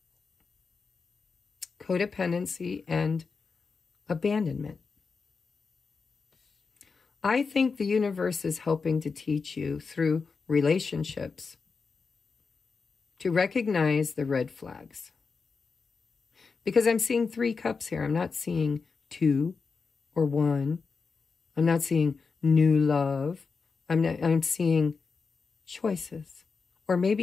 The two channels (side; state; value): right; quieter; 4.9 dB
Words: codependency, and abandonment. I think the universe is helping to teach you through relationships to recognize the red flags. Because I'm seeing 3 cups here. I'm not seeing 2 or 1. I'm not seeing new love. I'm seeing choices. Or